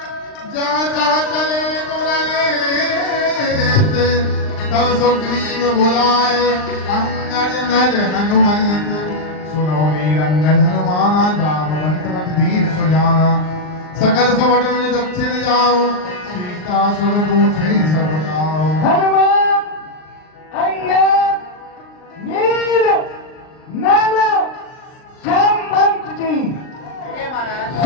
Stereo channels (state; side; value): late; right; 39 ms